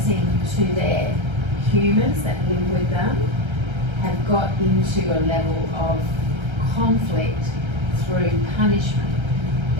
to their humans that live with them have got into a level of conflict through punishment.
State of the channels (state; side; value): late; left; 1.3 ms